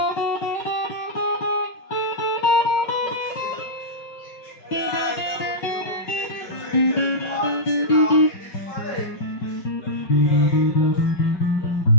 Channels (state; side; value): late; right; 5.4 ms